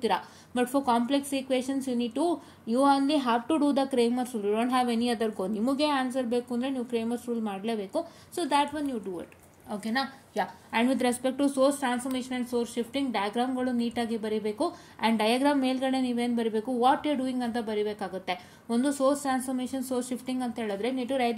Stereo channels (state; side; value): identical; both; correlation 1.00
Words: But for complex equations you only have to do the Cramer's rule. You don't have any other go. ನಿಮಗೆ ಆನ್ಸರ್ ಬೇಕು ಅಂದರೆ ನೀವು ಕ್ರೇಮರ್ಸ್ ರೂಲ್ ಮಾಡಲೇಬೇಕು. So that one you do it, ಓಕೆನಾ? ಯಾ. And with respect to source transformation and source shifting ಡಯಾಗ್ರಾಮ್ಗಳು ನೀಟಾಗಿ ಬರೀಬೇಕು. ಆ್ಯಂಡ್ ಡಯಾಗ್ರಾಮ್ ಮೇಲ್ಗಡೆ ನೀವೇನು ಬರೀಬೇಕು, ವಾಟ್ ಯು ಡೂಯಿಂಗ್ ಅಂತ ಬರೀಬೇಕಾಗುತ್ತೆ. ಒಂದು ಸೋರ್ಸ್ ಟ್ರಾನ್ಸ್ಫಾರ್ಮೇಷನ್ ಸೋರ್ಸ್ ಶಿಫ್ಟಿಂಗ್ ಅಂತ ಹೇಳಿದ್ರೆ need to